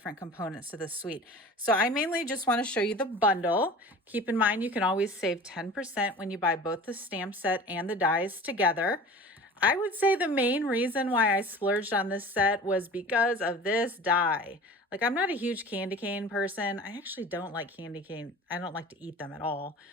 components to the suite. So I mainly just want to show you the bundle. Keep in mind, you can always save 10% when you buy both the stamp set and the dies together. I would say the main reason why I splurged on this set was because of this die. Like, I'm not a huge candy cane person. I actually don't like candy cane. I don't like to eat them at all.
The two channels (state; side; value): normal; both; correlation 0.39